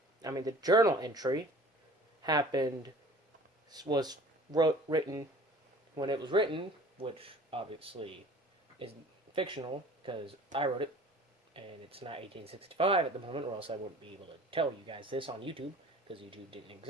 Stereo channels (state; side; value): normal; both; correlation 0.47